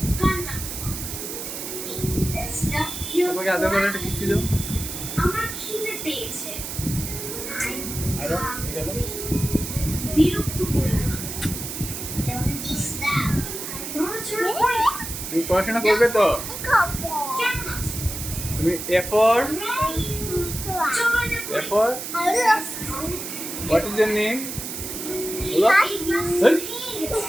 পাপ্পাকে আদর করে একটা কিস দাও। আমার খিদে পেয়েছে। আরো গেল। বিরক্ত করো না। তুমি পড়াশোনা করবে তো? কেমন আছো? তুমি A for A for what is your name? বলো। এই,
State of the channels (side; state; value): right; noise; hiss, 7 dB below the sound